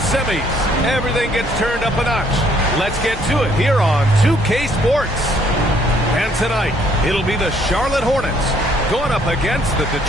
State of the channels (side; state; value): both; normal; correlation 0.65